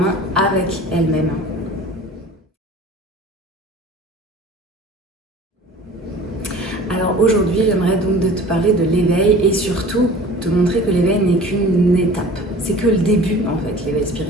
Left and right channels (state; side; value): normal; both; correlation 0.43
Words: avec elles-mêmes. Alors aujourd'hui, j'aimerais donc te parler de l'éveil et surtout te montrer que l'éveil n'est qu'une étape. C'est que le début en fait, l'éveil